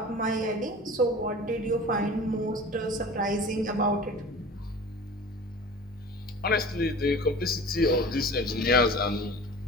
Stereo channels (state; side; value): normal; both; correlation 0.39